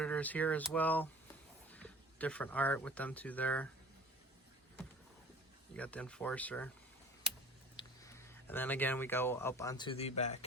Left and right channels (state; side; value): normal; both; correlation 0.45